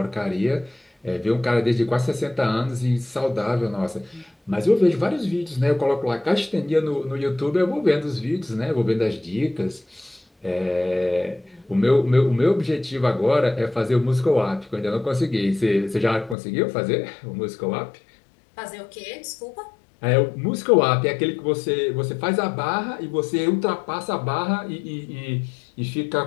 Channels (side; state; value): right; drops out; at 16.4 s